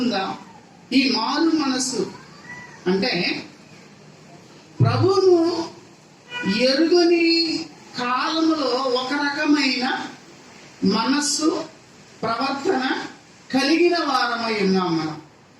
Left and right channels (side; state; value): both; identical; correlation 1.00